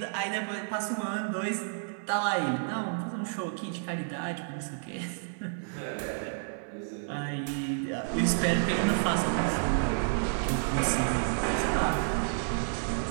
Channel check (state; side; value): silent; left; 57 dB below the other